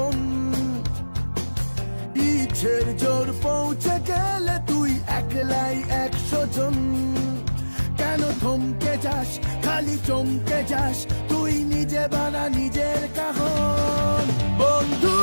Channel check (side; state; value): both; inverted; correlation -1.00